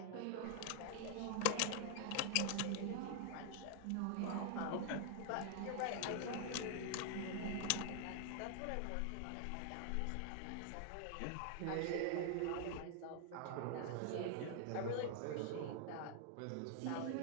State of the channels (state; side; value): different; both; correlation 0.00